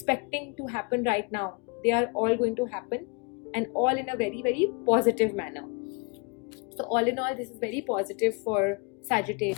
to happen right now, they are all going to happen, and all in a very, very positive manner. So all in all, this is very positive for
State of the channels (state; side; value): quieter; right; 32.2 dB